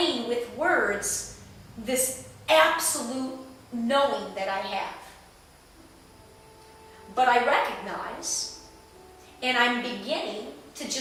with words this absolute knowing that I have. But I recognize, and I'm beginning to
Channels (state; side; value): identical; both; correlation 1.00